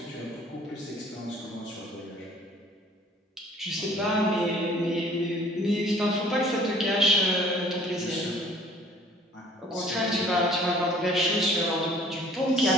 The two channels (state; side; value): normal; both; correlation 0.53